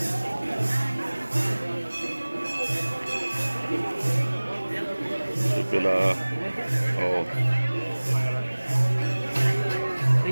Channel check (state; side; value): inverted; both; correlation -1.00